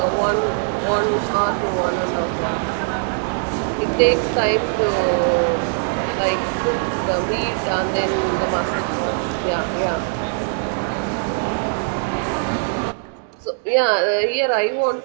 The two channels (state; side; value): silent; left; digital silence